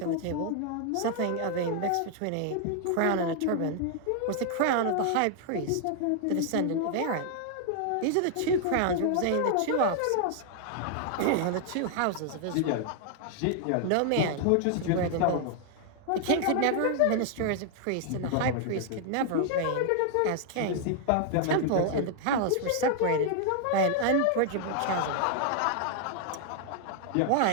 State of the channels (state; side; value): different; both; correlation 0.00